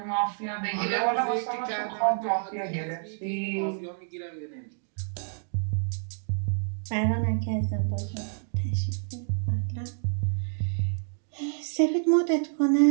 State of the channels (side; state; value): left; silent; digital silence